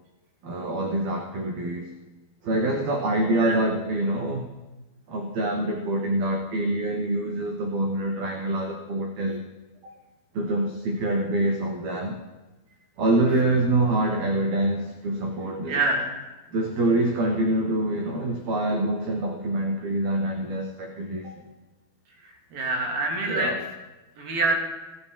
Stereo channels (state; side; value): late; left; 12 ms